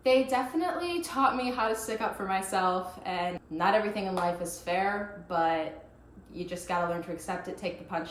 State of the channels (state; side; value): identical; both; correlation 1.00